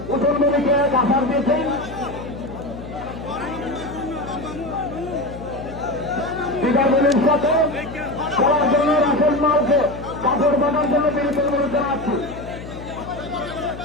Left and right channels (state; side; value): noise; left; hum, 12 dB below the sound